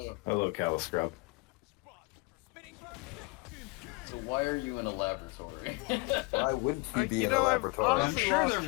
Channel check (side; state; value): right; quieter; 26.9 dB